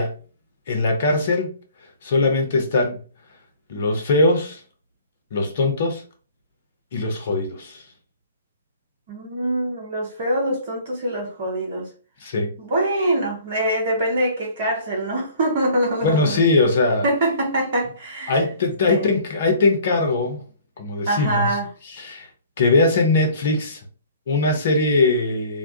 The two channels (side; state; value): both; inverted; correlation -0.52